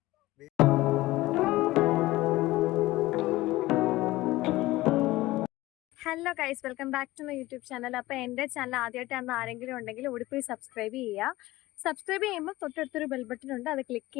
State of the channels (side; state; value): right; quieter; 18.2 dB